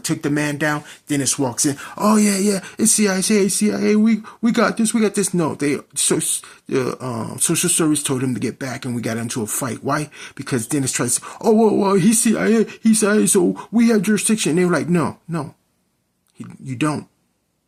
the man down, Dennis walks in. Oh yeah, it's CIA. We got this. No, the social service told him to get back, and we got into a fight. Why? Because Dennis tried to say, oh well, he's CIA, so we have jurisdiction. And they were like, no, you don't.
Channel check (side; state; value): both; identical; correlation 1.00